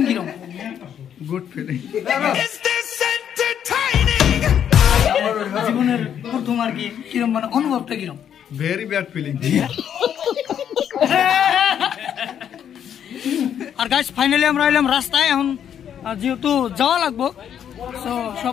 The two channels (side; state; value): right; quieter; 9.1 dB